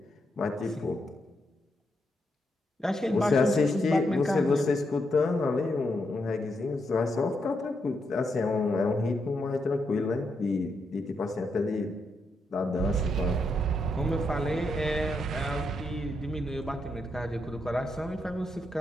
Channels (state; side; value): normal; both; correlation 0.81